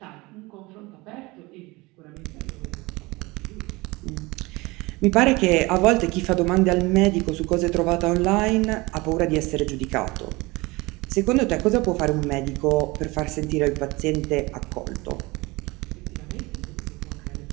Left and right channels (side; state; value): left; quieter; 23.1 dB